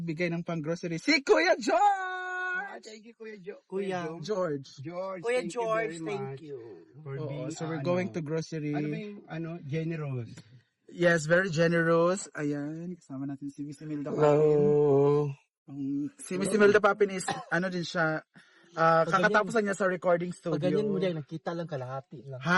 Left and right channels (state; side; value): identical; both; correlation 1.00